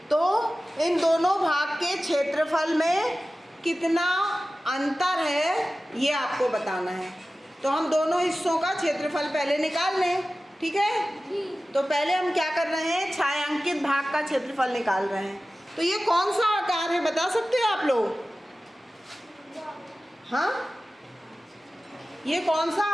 तो इन दोनों भाग के क्षेत्रफल में कितना अंतर है ये आपको बताना है। तो हम दोनों हिस्सों का क्षेत्रफल पहले निकाल लें, ठीक है? तो पहले हम क्या कर रहे हैं, छायांकित भाग का क्षेत्रफल निकाल रहे हैं। तो ये कौन सा आकार है बता सकते हो आप लोग? हाँ, ये कौन सा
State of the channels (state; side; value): normal; both; correlation 0.96